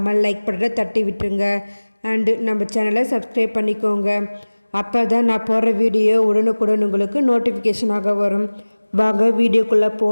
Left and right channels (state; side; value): inverted; both; correlation -1.00